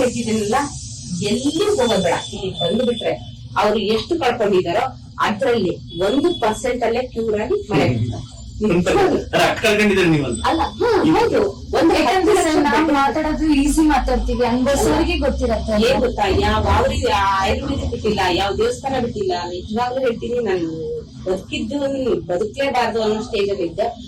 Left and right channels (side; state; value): both; identical; correlation 1.00